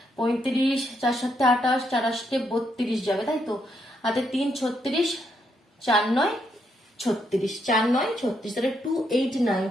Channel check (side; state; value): both; normal; correlation 0.77